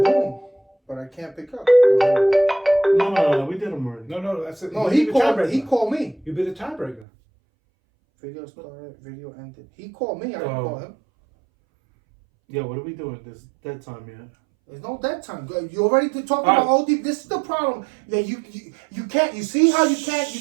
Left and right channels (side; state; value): left; drops out; at 7.1 s